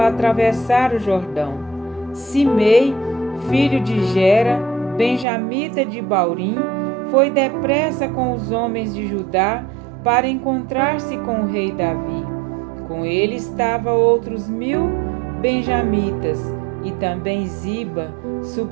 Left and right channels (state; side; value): drops out; left; at 5.2 s